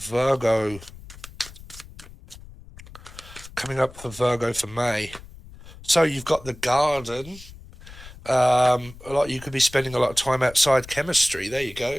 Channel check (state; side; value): noise; left; rumble, 18 dB below the sound